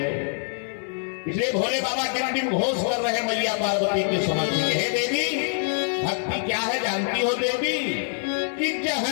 इसलिए भोले बाबा टिम घोष कर रहे मैया पार्वती के समझ में, हे देवी भक्ति क्या है जानती हो देवी? कि जह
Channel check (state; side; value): silent; right; 57 dB below the other